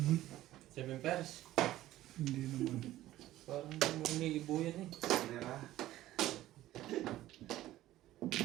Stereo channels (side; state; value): left; quieter; 14.9 dB